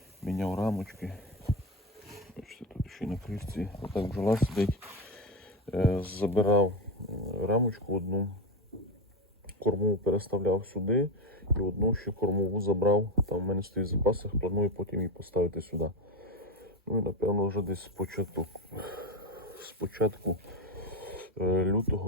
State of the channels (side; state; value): both; normal; correlation 0.15